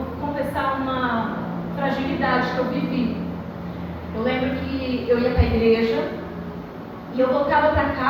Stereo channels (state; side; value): identical; both; correlation 1.00